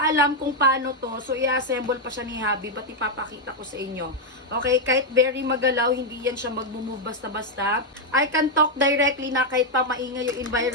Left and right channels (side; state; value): both; normal; correlation 0.00